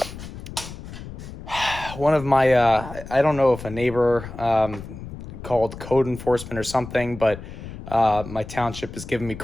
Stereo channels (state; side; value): noise; left; rumble, 12 dB below the sound